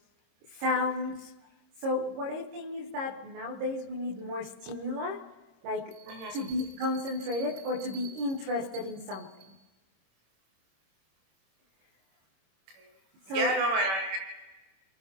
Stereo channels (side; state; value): left; late; 26 ms